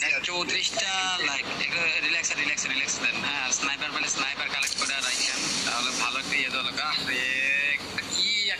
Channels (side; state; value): left; noise; hum, 26 dB below the sound